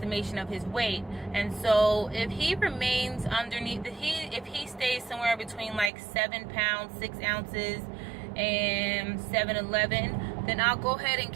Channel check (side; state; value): left; drops out; at 5.9 s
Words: of his weight. And so if he remains underneath, if he stays somewhere between like 7 pounds 6 ounces and 7'11", then I'll go ahead and